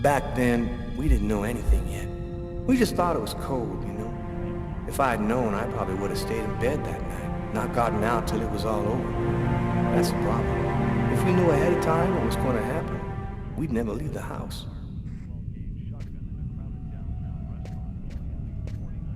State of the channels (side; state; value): both; identical; correlation 1.00